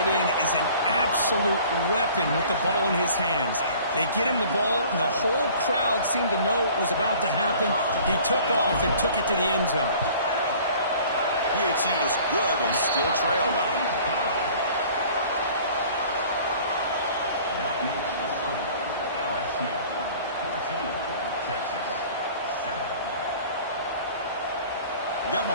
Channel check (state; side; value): inverted; both; correlation -0.49